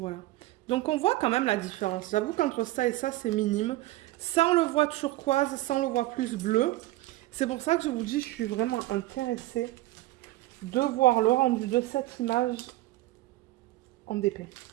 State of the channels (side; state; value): left; quieter; 17.5 dB